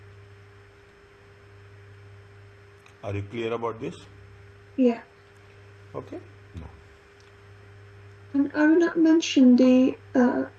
Are you clear about this? Yeah. Okay. No. And I will not mention the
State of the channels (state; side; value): identical; both; correlation 1.00